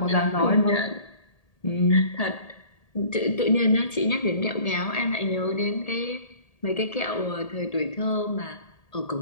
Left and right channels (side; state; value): right; late; 1.8 ms